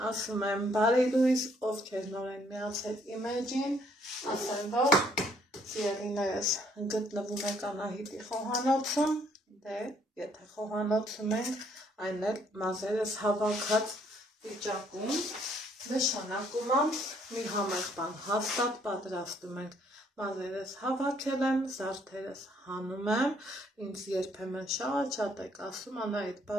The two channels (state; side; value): normal; both; correlation 0.66